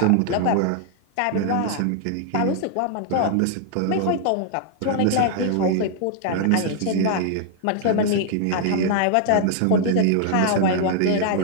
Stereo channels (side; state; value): both; different; correlation 0.00